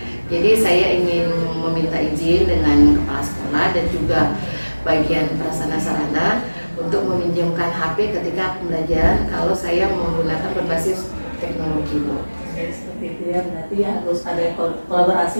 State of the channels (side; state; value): both; inverted; correlation -1.00